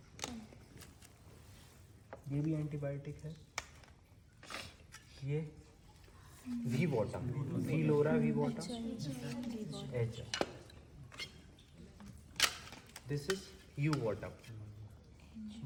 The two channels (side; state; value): both; identical; correlation 1.00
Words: ये भी एंटीबायोटिक है। ये वी बॉटम, वी लोरा V bottom, H. This is U bottom.